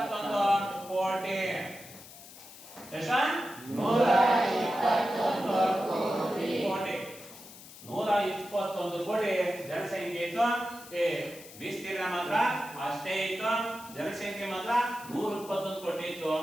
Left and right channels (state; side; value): noise; left; hiss, 17 dB below the sound